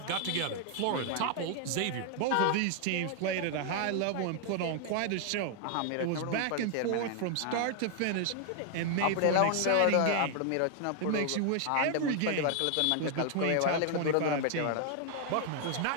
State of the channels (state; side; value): different; both; correlation 0.00